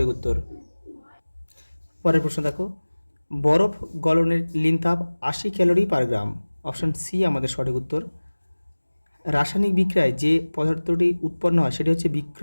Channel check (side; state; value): both; inverted; correlation -1.00